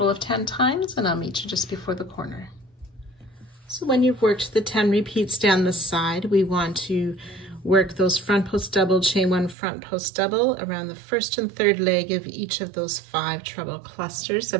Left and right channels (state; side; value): drops out; left; at 9.6 s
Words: of 10 times, and I'll meet you just before the corner. So when you've worked the 10 repeats down the side, we want to work those front post double, chain 1, front post double around the first and third leg of each of those 5 treble clusters